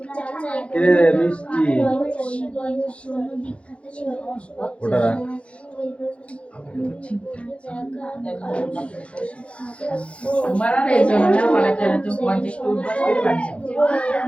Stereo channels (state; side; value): late; right; 0.061 ms